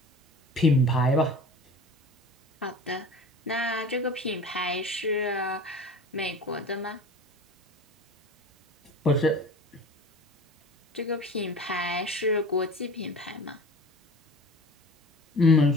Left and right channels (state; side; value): normal; both; correlation 0.39